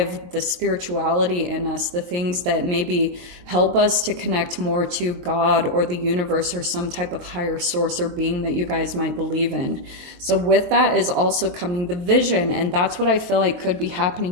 the spirituality in us, the things that maybe help us to connect more to God or the universe or some type of higher source or being that you guys might believe in. So with that is also coming the vision. And that's what I feel like could be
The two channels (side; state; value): left; late; 23 ms